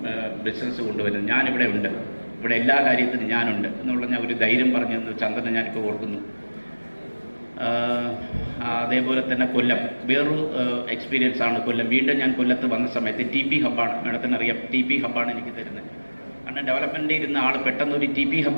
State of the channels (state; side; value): inverted; both; correlation -1.00